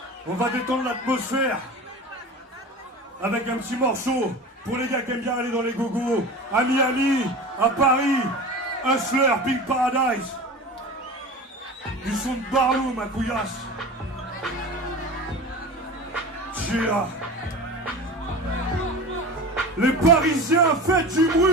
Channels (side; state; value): both; normal; correlation 0.33